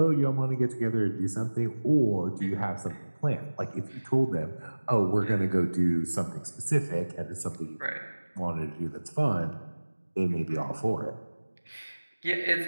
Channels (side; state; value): both; inverted; correlation -1.00